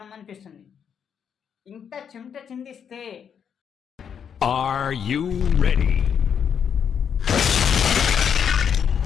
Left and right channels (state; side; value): quieter; right; 7.7 dB